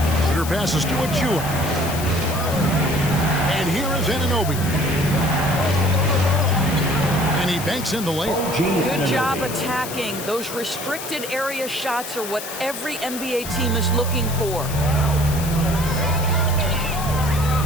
Shooter passes to Achua. And here is Anunoby. And he banks in the layup. Good job attacking. Those restricted area shots are what every NBA team is looking for.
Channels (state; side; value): noise; left; hiss, 9 dB below the sound